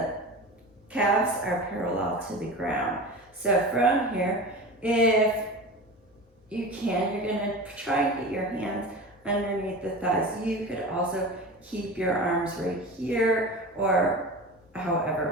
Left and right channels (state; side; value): normal; both; correlation 0.31